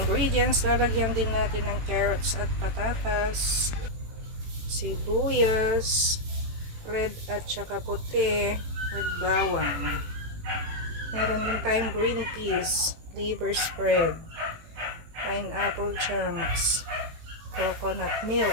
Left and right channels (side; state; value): left; late; 18 ms